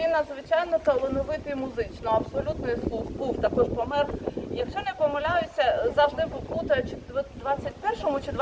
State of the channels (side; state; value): both; identical; correlation 1.00